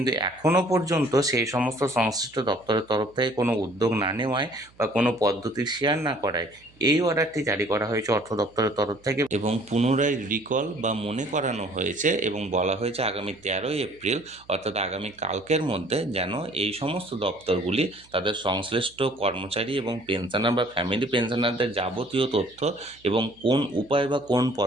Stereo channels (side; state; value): right; noise; hum, 29 dB below the sound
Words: এখনও পর্যন্ত সেই সমস্ত সংশ্লিষ্ট দপ্তরের তরফ থেকে কোনো উদ্যোগ না নেওয়ায় বা কোনো পদ্ধতি শেয়ার না করায় এই অর্ডারটি জারি করা হয়েছে অর্থ দপ্তরের তরফ থেকে এবং পুনরায় রিকল বা মনে করানো হয়েছে এবং বলা হয়েছে আগামী 13ই এপ্রিল অর্থাৎ আগামী কালকের মধ্যে যেন এই সমস্ত দপ্তরগুলি তাদের সংশ্লিষ্ট কর্মচারী এবং পেনশনার বা ফ্যামিলি পেনশনারদের যাবতীয় তথ্য এবং কোন উপায় বা কোন